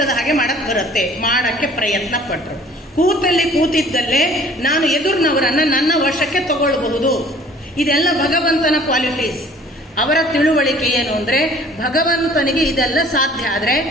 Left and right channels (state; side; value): normal; both; correlation 0.52